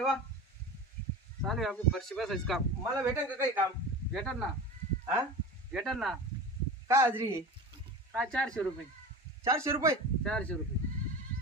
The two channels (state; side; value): normal; both; correlation 0.32